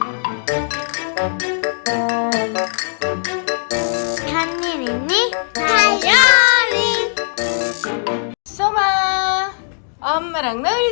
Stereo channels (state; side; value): silent; right; digital silence